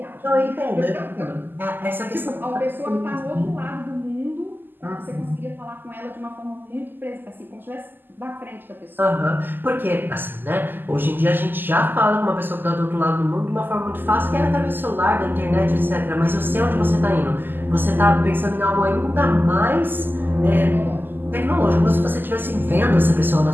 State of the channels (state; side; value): late; left; 0.093 ms